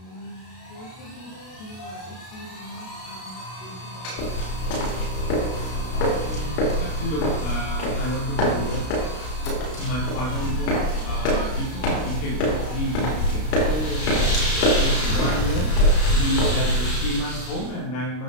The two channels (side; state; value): right; late; 32 ms